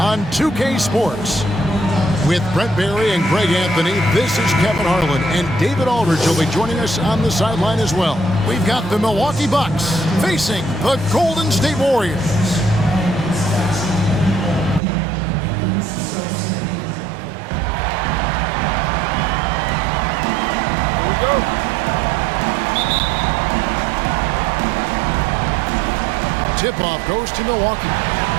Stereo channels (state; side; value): drops out; left; at 14.8 s